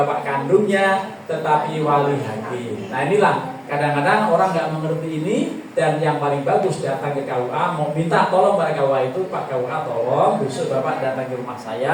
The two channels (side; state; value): both; identical; correlation 1.00